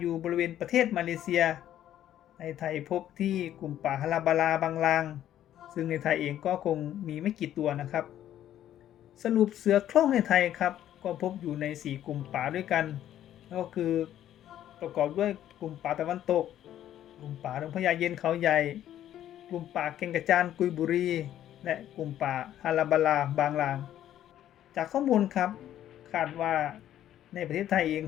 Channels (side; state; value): right; quieter; 11.7 dB